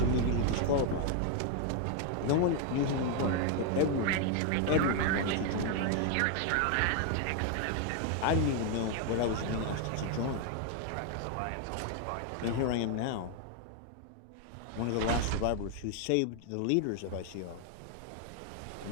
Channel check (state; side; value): different; both; correlation 0.01